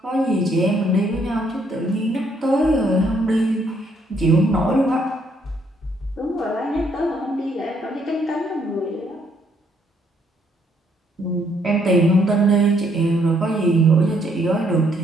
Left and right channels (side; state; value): both; normal; correlation 0.70